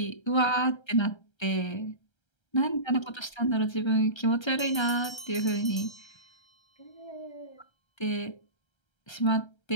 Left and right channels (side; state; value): right; late; 1.3 ms